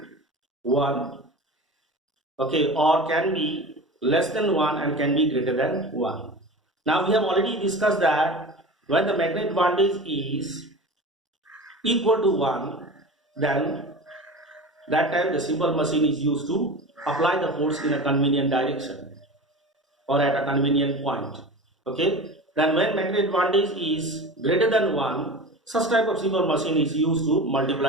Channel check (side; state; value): both; normal; correlation 0.33